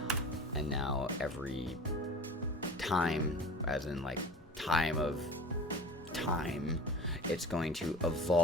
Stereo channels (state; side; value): normal; both; correlation 0.38